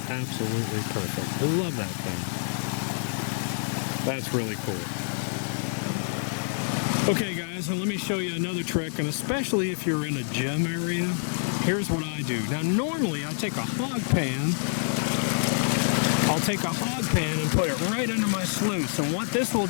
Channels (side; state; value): right; silent; digital silence